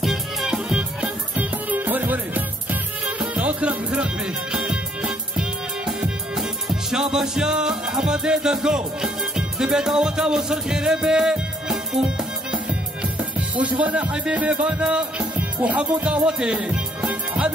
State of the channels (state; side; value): normal; both; correlation 0.66